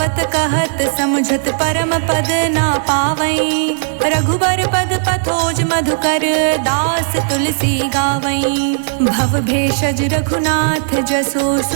कहत समझत परम पद ना पावई रघुबर पद पथोज मधुकर दास तुलसी गावई भव भेषज रघुनाथ जसो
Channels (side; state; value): left; silent; digital silence